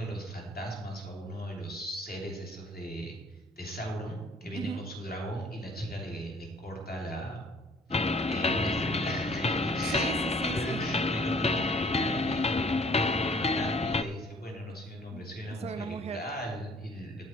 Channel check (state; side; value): normal; both; correlation 0.56